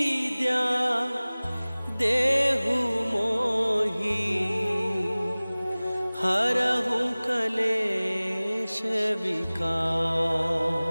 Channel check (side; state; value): both; inverted; correlation -0.99